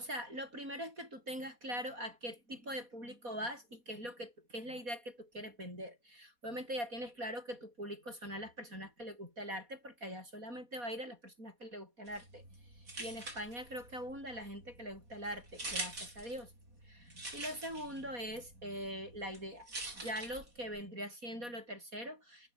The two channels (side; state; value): left; late; 4.2 ms